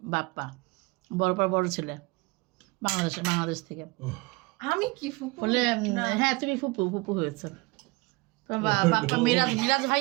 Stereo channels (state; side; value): quieter; left; 25.0 dB